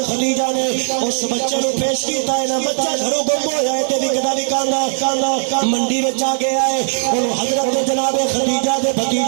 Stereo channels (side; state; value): left; silent; 68 dB below the other